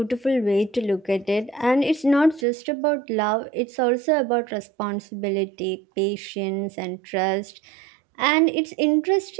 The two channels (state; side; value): drops out; left; at 2.5 s